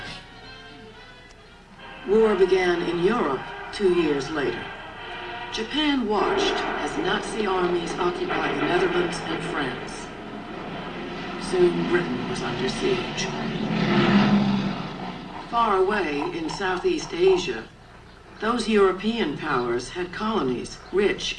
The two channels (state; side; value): identical; both; correlation 1.00